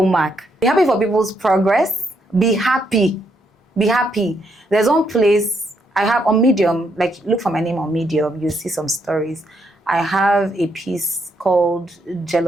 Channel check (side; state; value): both; normal; correlation 0.76